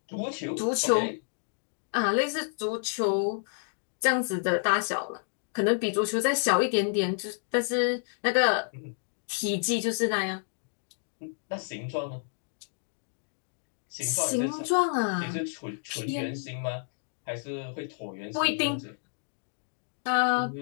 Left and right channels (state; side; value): silent; right; digital silence